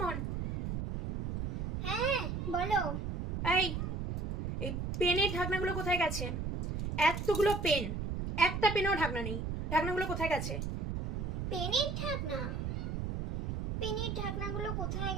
হ্যাঁ বলো। এই এই পেনের ঢাকনাগুলো কোথায় গেছে? এতগুলো পেন, একটা পেনও ঢাকনা নেই। ঢাকনাগুলো কোথায় গেছে? পেনের ঢাকনা? পেনের ঢাকনাগুলো কোথায়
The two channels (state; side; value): noise; right; rumble, 2 dB below the sound